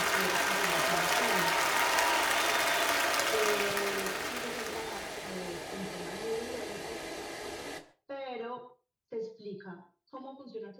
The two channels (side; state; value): both; identical; correlation 1.00